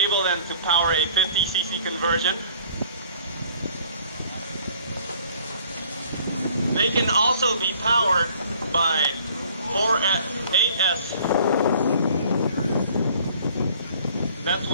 then to power a 50cc conversion. They can also be powered by 8S. That's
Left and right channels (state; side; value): inverted; both; correlation -0.54